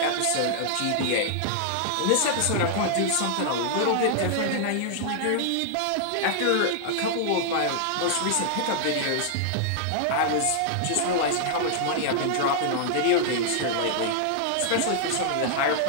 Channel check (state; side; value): different; both; correlation -0.01